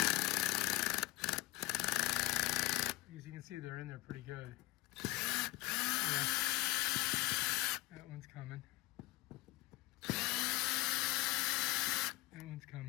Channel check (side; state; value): right; quieter; 20.4 dB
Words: As you can see, they're in there pretty good. Yeah. That one's coming. That one's